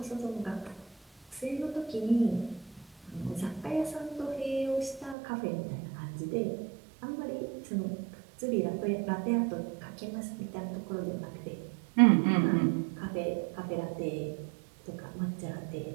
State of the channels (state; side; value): drops out; left; at 5.2 s